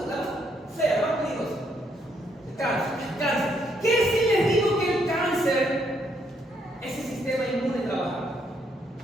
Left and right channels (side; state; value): both; normal; correlation 0.73